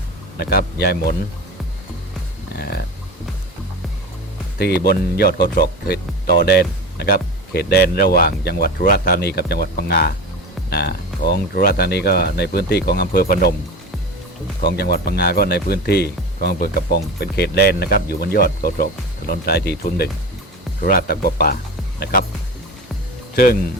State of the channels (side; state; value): both; normal; correlation 0.29